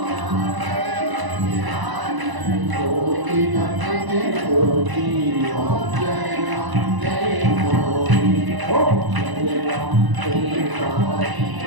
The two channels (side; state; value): left; late; 1.0 ms